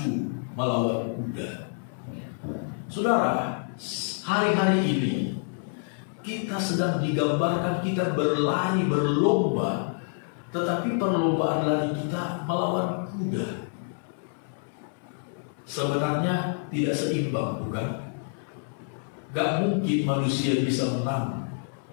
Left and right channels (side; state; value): right; silent; 60 dB below the other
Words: melawan kuda? Saudara, hari-hari ini kita sedang digambarkan kita berlari, berlomba, tetapi perlombaan lari kita melawan kuda. Sebenarnya tidak seimbang, bukan? Gak mungkin manusia bisa menang